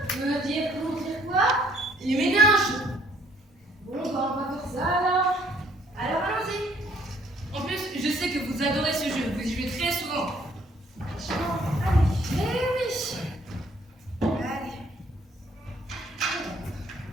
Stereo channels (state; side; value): normal; both; correlation 0.63